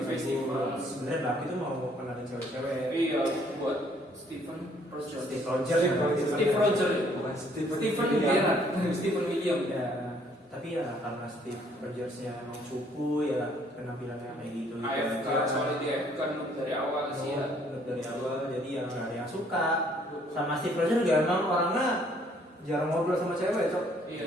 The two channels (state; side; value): normal; both; correlation 0.63